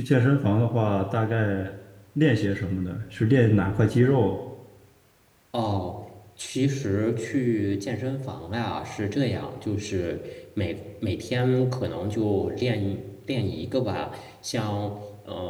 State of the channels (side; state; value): both; identical; correlation 1.00